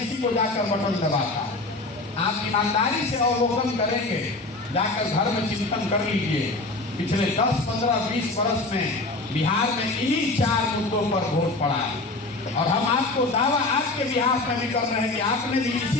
को जाकर बटन दबाता है। आप ईमानदारी से अवलोकन करेंगे, जाकर घर में चिंतन कर लीजिए। पिछले 10, 15, 20 वर्ष में बिहार में इन्हीं 4 मुद्दों पर वोट पड़ा है। और हम आपको दावा आपके बिहार में भी कर रहे हैं कि आपने भी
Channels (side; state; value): right; quieter; 3.1 dB